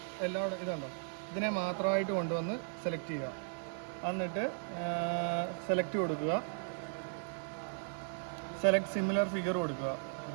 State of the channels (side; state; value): left; silent; 53 dB below the other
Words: എല്ലാവരും ഇതുണ്ടോ, ഇതിനെ മാത്രമായിട്ട് കൊണ്ടുവന്ന് സെലക്ട് ചെയ്യുക. എന്നിട്ട് സെലക്ട് കൊടുക്കുക. സെലക്ട് സിമിലർ ഫിഗർ കൊടുക്കുക.